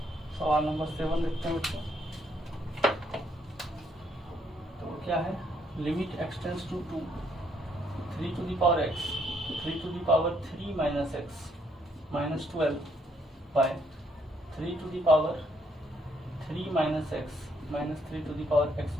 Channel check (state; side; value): normal; both; correlation 0.71